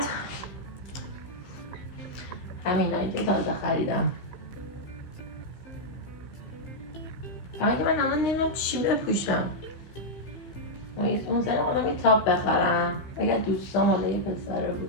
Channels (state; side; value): late; right; 15 ms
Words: همینایی که تازه خریدم. فقط که من الان نمیدونم چی بپوشم. اون سری آدم یه تاپ بخرم. اگر دوستام حالا یه پسره